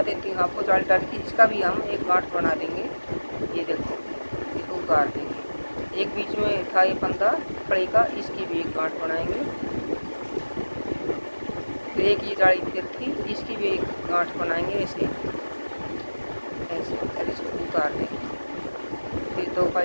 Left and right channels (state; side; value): inverted; both; correlation -1.00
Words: देती हूँ आपको, जाली डाली थी, इसका भी हम एक गांठ बना देंगे। ये देखो, इसको उतार देंगे। एक बीच में था ये फंदा फड़ी का, इसकी भी एक गांठ बनाएंगे। फिर एक ये जाली फिर थी, इसकी भी एक गांठ बनाएंगे ऐसे ऐसे, और इसको उतार देंगे। फिर दो का